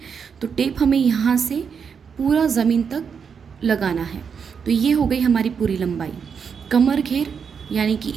तो टेप हमें यहाँ से पूरा ज़मीन तक लगाना है। तो ये हो गई हमारी पूरी लंबाई। कमर घेर यानी कि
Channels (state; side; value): quieter; left; 6.5 dB